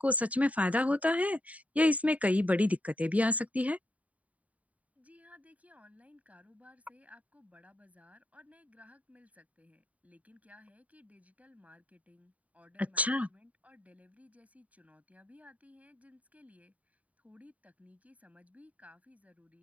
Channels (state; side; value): late; left; 0.069 ms